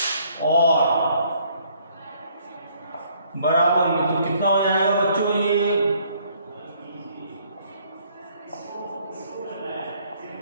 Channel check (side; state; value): both; inverted; correlation -0.64